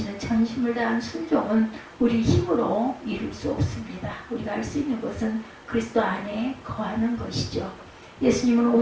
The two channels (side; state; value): both; identical; correlation 1.00